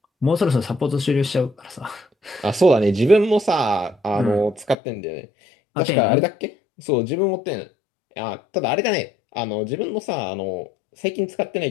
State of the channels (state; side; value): drops out; right; at 4.8 s